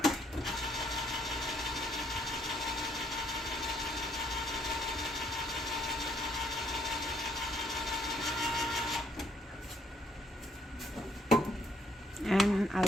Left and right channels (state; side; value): normal; both; correlation 0.68